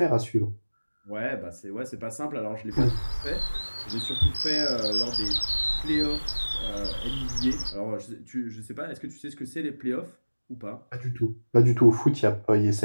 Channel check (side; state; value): both; inverted; correlation -1.00